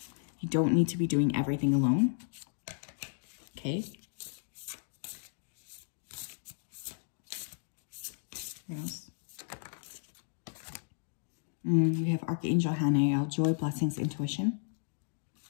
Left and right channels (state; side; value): silent; right; digital silence